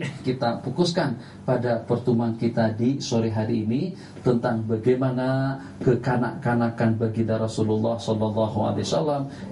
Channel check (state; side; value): identical; both; correlation 1.00